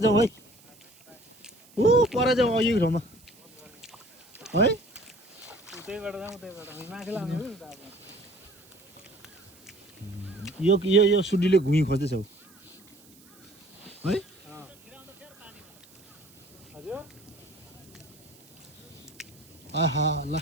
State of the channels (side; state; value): right; noise; hiss, 26 dB below the sound